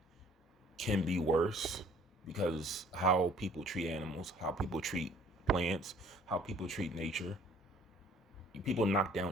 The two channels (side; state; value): both; normal; correlation 0.56